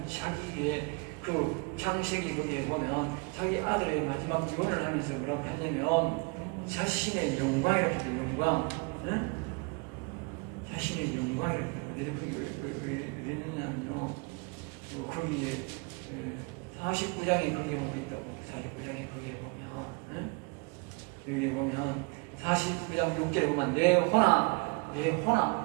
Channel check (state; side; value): quieter; left; 31.8 dB